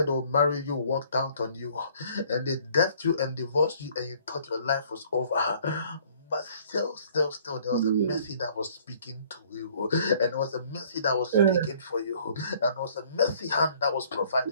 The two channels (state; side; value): inverted; both; correlation -0.57